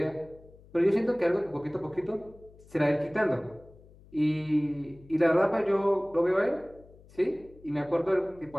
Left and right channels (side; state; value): left; noise; hum, 24 dB below the sound